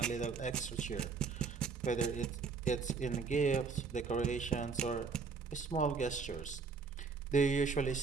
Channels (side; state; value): left; quieter; 5.0 dB